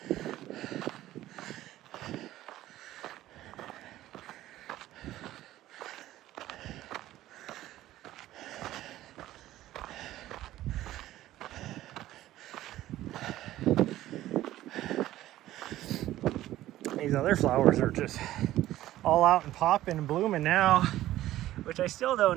These other flowers are just all out and popping and blooming now, which I still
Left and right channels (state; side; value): quieter; left; 14.6 dB